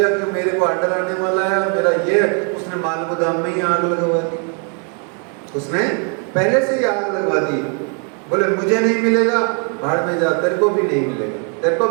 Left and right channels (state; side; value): quieter; left; 39.9 dB